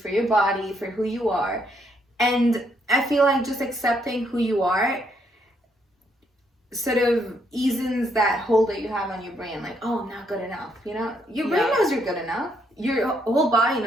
your body, for who you are? And I feel like just accepting who you are sort of eases that hold that you have on your brain, like, oh, I'm not good enough. You know, your brain knows you're good enough. Your whole body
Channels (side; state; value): both; normal; correlation 0.73